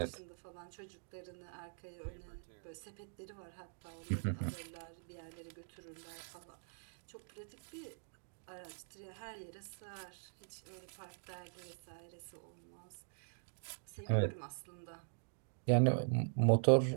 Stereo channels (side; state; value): left; silent; digital silence